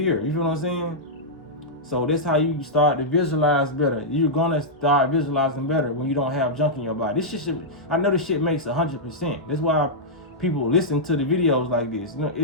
You feel what I'm saying? So that's how you start to visualize better. You're gonna start visualizing better when you don't have junk in your body. This shit, I know this shit makes 100%. That's why people listen to the videos like this. You know,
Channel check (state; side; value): normal; both; correlation -0.09